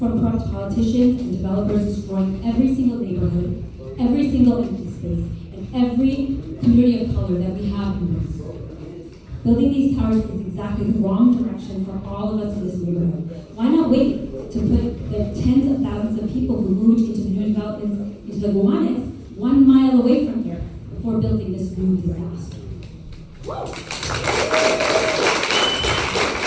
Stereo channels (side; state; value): both; identical; correlation 1.00